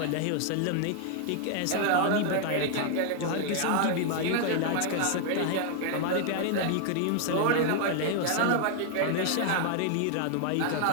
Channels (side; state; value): both; different; correlation 0.00